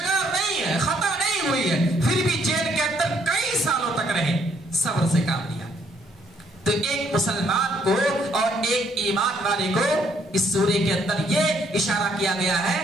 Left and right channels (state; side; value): normal; both; correlation 0.68